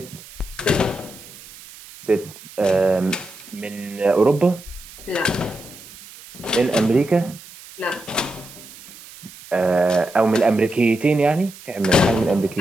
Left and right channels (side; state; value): right; noise; hiss, 18 dB below the sound